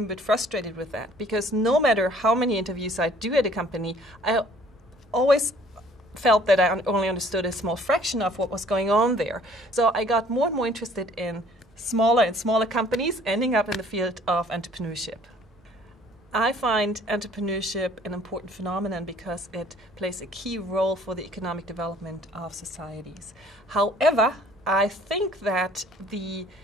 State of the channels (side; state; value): both; normal; correlation 0.56